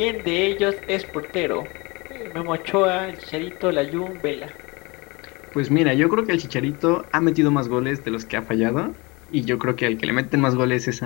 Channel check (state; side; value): quieter; right; 26.2 dB